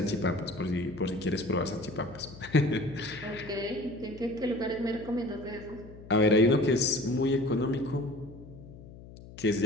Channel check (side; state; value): left; noise; hum, 17 dB below the sound